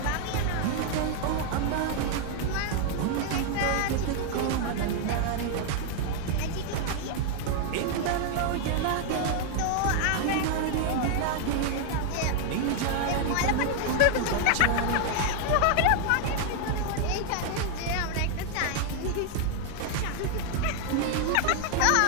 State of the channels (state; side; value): different; both; correlation 0.00